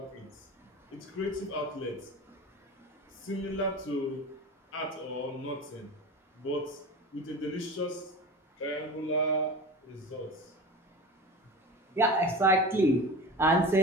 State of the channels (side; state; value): both; normal; correlation 0.32